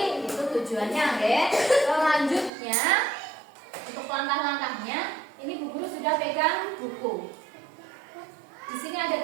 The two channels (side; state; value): left; drops out; at 2.5 s